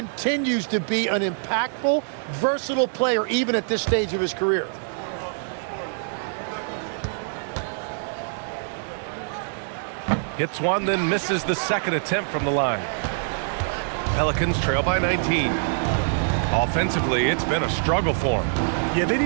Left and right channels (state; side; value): silent; left; 62 dB below the other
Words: to be an impactful, versatile player even at this stage of his career. Hits one, then misses the second attempt from the line. Pelicans trail by 19. Offensively, it's been a struggle for him. Yeah, they